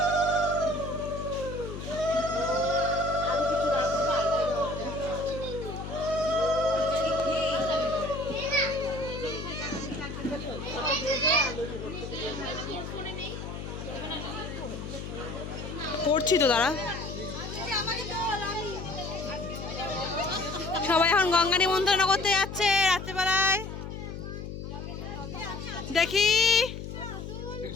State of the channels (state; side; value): noise; left; hum, 8 dB below the sound